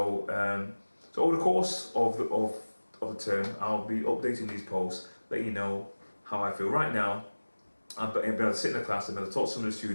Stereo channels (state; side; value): inverted; both; correlation -1.00